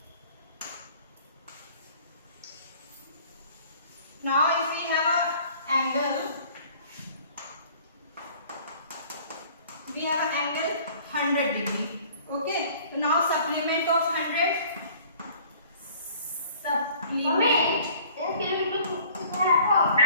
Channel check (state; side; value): inverted; both; correlation -0.52